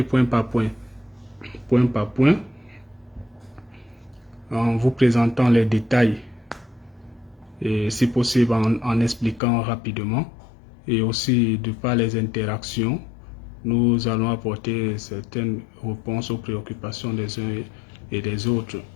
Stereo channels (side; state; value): right; drops out; at 9.4 s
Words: point par point en vous présentant les détails et si possible en expliquant rapidement, et aussi de par les interactions, nous allons apporter certaines réponses aux préoccupations des uns et des autres.